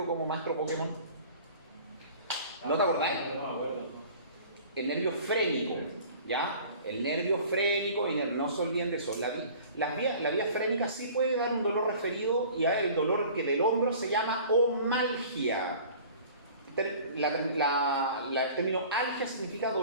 como maestro Pokémon. ¿No te acordáis? El nervio frénico, ¿ya? El nervio frénico, y no se olviden de eso. La vía frénica sí puede dar un dolor referido, y el dolor que del hombro se llama omalgia. El término algia significa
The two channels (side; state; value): both; inverted; correlation -0.45